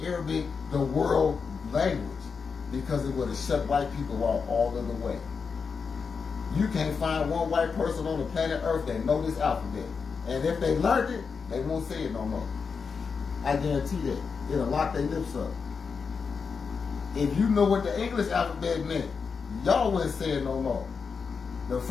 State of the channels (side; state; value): right; quieter; 5.5 dB